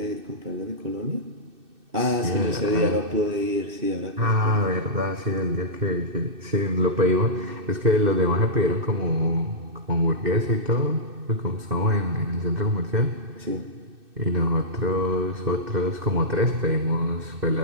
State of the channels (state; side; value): late; left; 2.6 ms